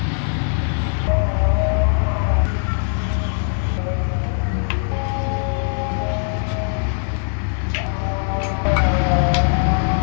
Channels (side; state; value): right; silent; digital silence